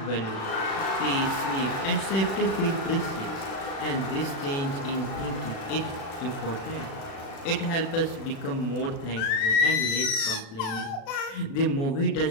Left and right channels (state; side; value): late; right; 36 ms